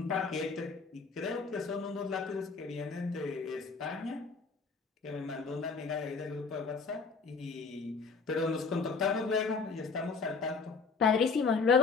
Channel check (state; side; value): quieter; right; 4.7 dB